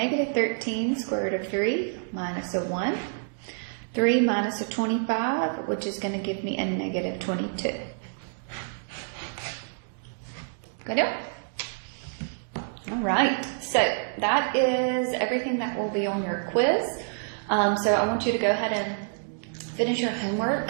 13 square root of 3 minus a 1. 3 minus a 25, which is going to give me a negative 22. Good deal? All right, so that is everything that will be on your quiz. So I want you to go ahead and finish your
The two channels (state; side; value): silent; left; digital silence